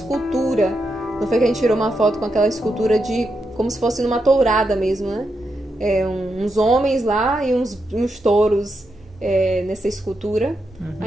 Não foi que a gente tirou uma foto com aquela escultura como se fosse numa tourada mesmo, né? Uns homens lá e uns touros nessa escultura. A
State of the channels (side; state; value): both; normal; correlation 0.84